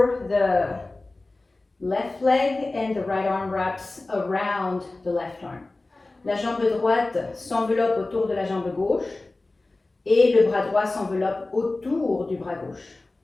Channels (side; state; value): right; quieter; 3.1 dB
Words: the left leg and the right arm wraps around the left arm. La jambe droite s'enveloppe autour de la jambe gauche et le bras droit s'enveloppe autour du bras gauche.